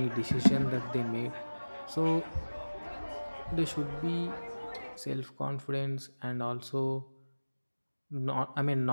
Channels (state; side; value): inverted; both; correlation -1.00